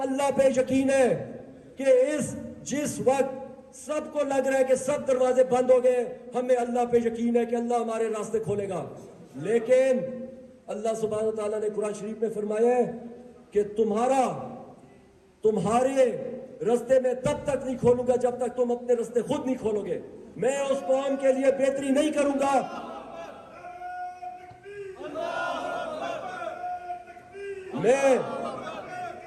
اللہ پہ یقین ہے کہ جس وقت سب کو لگ رہا ہے کہ سب دروازے بند ہو گئے، ہمیں اللہ پہ یقین ہے کہ اللہ ہمارے راستے کھولے گا۔ لیکن اللہ سبحانہ و تعالیٰ نے قرآن شریف میں فرمایا ہے کہ تمہارے راستے میں تب تک نہیں کھولوں گا جب تک تم اپنے راستے خود نہیں کھولو گے۔ میں اس قوم کے لیے بہتری نہیں کروں گا۔ میں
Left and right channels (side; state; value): both; identical; correlation 1.00